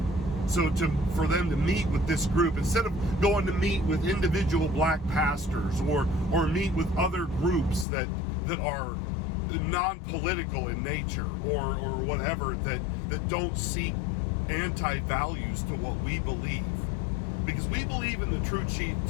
So for them to meet with this group, instead of going to meet with individual black pastors or meet with other groups that are non-political in nature or whatever, that don't seek anti-values to what we believe. Because we believe in the true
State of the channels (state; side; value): drops out; right; at 7.9 s